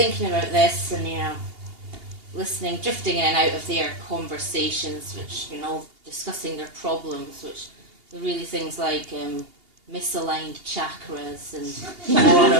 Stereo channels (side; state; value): left; late; 2.8 ms